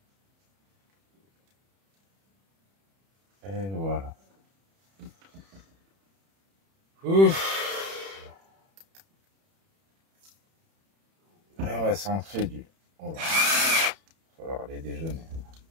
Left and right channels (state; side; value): late; left; 31 ms